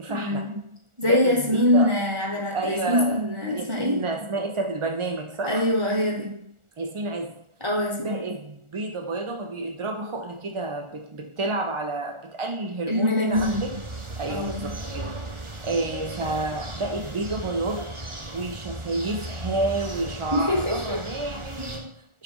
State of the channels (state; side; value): late; left; 1.4 ms